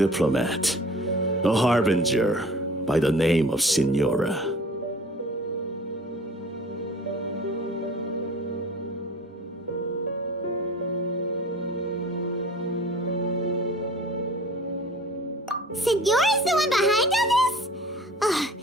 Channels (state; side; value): normal; both; correlation 0.45